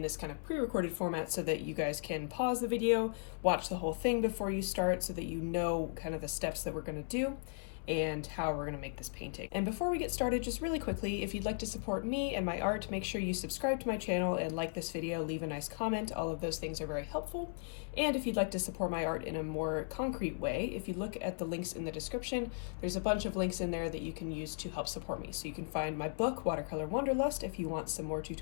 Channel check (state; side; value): silent; right; 53 dB below the other